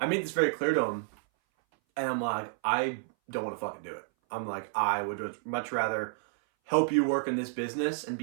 made this very clear to him, and I'm like, I don't want to fucking do it. I'm like, I would much rather help you work in this business and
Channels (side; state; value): left; silent; 58 dB below the other